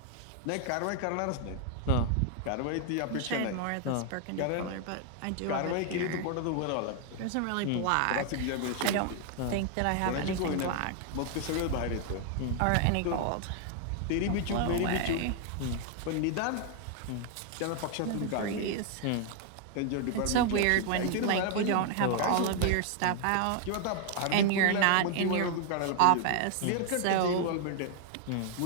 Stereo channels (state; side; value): different; both; correlation 0.00